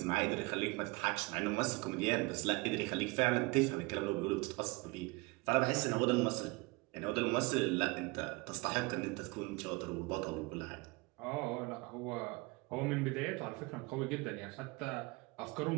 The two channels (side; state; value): left; quieter; 25.5 dB